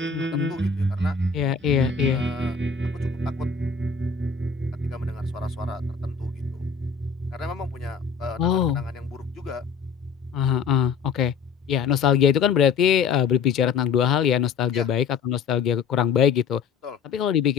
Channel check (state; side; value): quieter; right; 5.9 dB